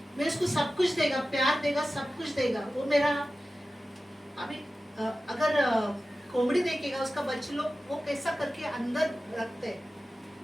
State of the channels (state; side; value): normal; both; correlation 0.95